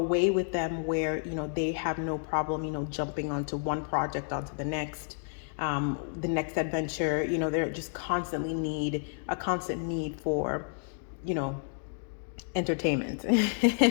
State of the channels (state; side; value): silent; right; digital silence